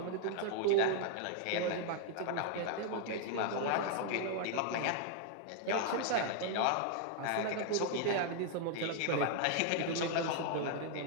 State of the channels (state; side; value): different; both; correlation 0.00